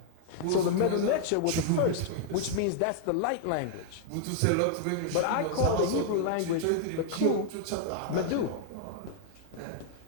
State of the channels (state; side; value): different; both; correlation -0.01